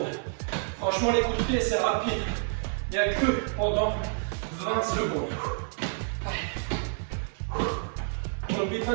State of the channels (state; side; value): silent; left; 59 dB below the other